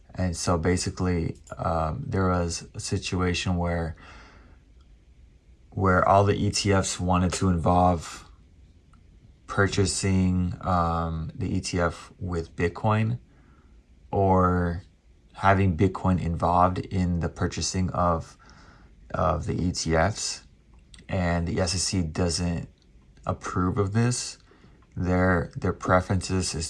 And so basically, there was a situation where all the ETFs wanted to involve purchasing the ETF with Bitcoin, or having Bitcoin involved in the purchasing of the ETFs, and the SEC doesn't approve of this. Their preferences is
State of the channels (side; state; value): both; identical; correlation 1.00